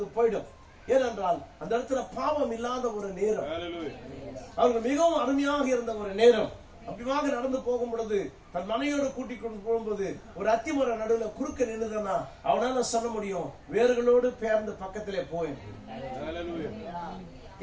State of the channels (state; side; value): identical; both; correlation 1.00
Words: போயிடும். ஏனென்றால் அந்த இடத்துல பாவம் இல்லாத ஒரு நேரம், அவர்கள் மிகவும் அருமையாக இருந்த ஒரு நேரம். அப்படியாக நடந்து போகும் பொழுது தன் மனையோடு கூட்டிக் கொண்டு போகும்போது ஒரு அத்திமர நடுவில் குறுக்க நின்றுதானா அவனால சொல்ல முடியும், வேர்களோடு பெயர்ந்து பக்கத்திலே போய்.